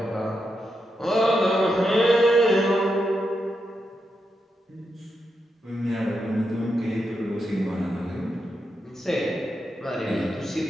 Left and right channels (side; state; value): both; normal; correlation 0.85